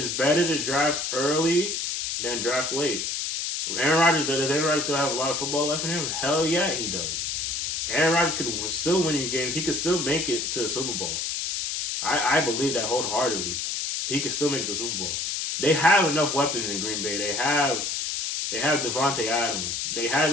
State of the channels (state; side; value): noise; left; hiss, 2 dB below the sound